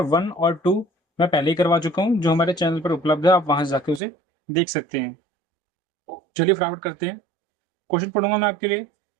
1 और 2 मैं पहले ही करवा चुका हूं, जो हमारे चैनल पर उपलब्ध है, आप वहां से जाके उसे देख सकते हैं। चलिए फटाफट करते हैं। क्वेश्चन पढ़ूंगा मैं आपके लिए।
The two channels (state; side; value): drops out; left; at 4.0 s